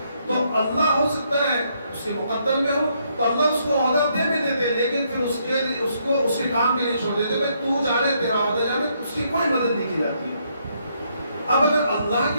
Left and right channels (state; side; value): inverted; both; correlation -0.74